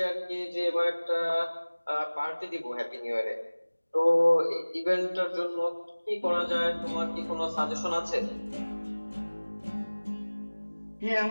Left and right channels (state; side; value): inverted; both; correlation -1.00